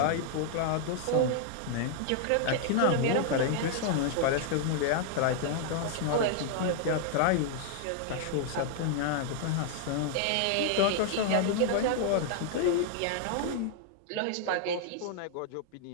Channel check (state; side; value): different; both; correlation 0.00